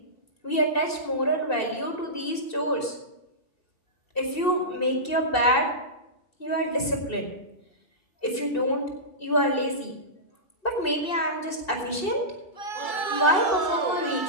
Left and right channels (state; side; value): late; right; 2.7 ms